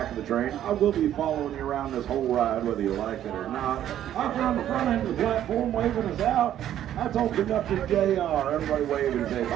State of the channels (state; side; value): quieter; left; 11.4 dB